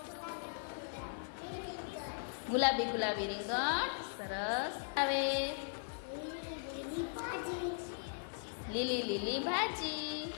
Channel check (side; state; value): right; silent; 52 dB below the other